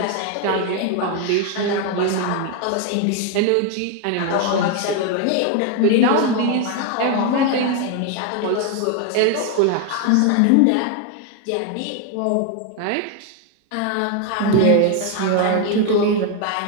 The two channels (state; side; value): different; both; correlation 0.01